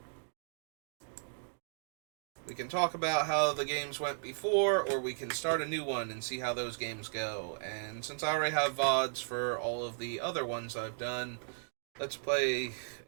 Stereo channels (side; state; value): left; silent; digital silence